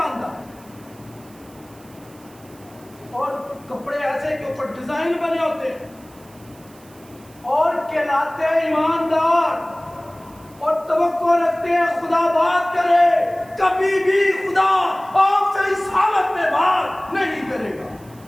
اور کپڑے ایسے کے اوپر ڈیزائن بنے ہوتے ہیں اور کہلاتے ہیں ایماندار اور توقع رکھتے ہیں خدا بات کرے. کبھی بھی خدا آپ سے اس حالت میں بات نہیں کرے گا.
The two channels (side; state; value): right; noise; hiss, 26 dB below the sound